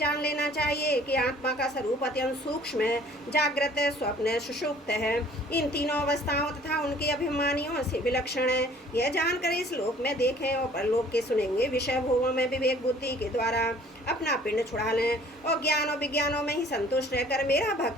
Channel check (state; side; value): normal; both; correlation 0.54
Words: लेना चाहिए कि आत्मा का स्वरूप अत्यंत सूक्ष्म है, जागृत है, स्वप्न है, सुषुप्त है। इन तीनों अवस्थाओं तथा उनके अभिमानियों से विलक्षण है। यह जानकर इस लोक में देखें और परलोक के सुनेंगे विषय भोगों में विवेक बुद्धि के द्वारा अपना पिंड छुड़ा लें और ज्ञान और विज्ञानों में ही संतुष्ट रहकर मेरा